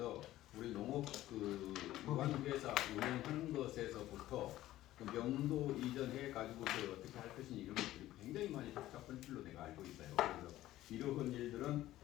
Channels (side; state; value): right; quieter; 14.9 dB